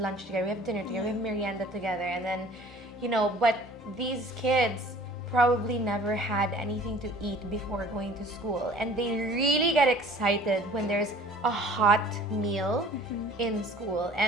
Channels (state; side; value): normal; both; correlation 0.49